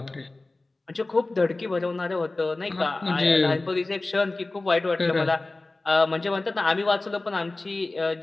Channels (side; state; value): right; quieter; 3.1 dB